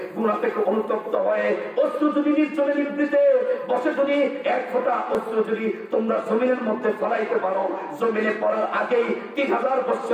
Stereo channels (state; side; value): identical; both; correlation 1.00